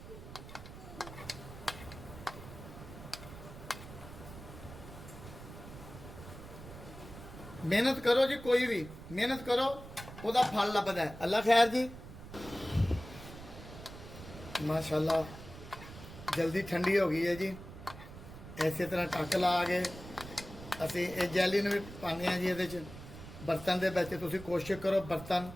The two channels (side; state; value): right; noise; rumble, 14 dB below the sound